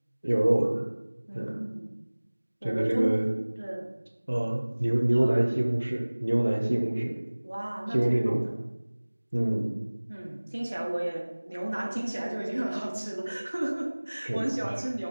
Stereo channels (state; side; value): inverted; both; correlation -1.00